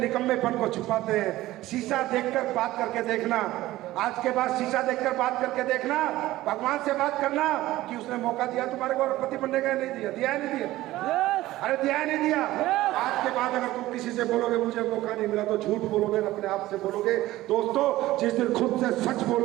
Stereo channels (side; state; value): left; quieter; 16.5 dB